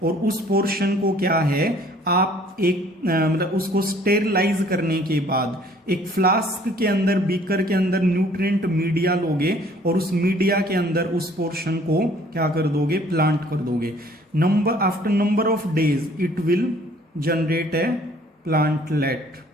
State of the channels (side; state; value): both; normal; correlation 0.57